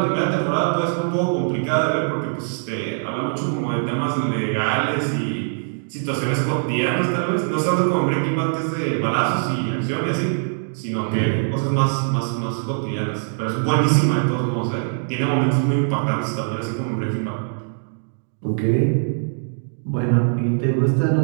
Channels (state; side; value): silent; left; digital silence